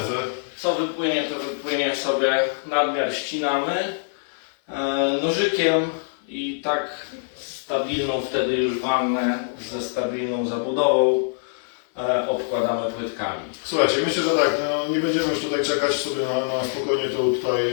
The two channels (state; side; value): silent; right; 58 dB below the other